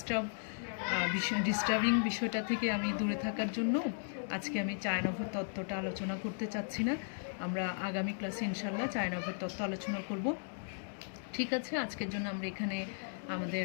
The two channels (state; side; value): silent; right; digital silence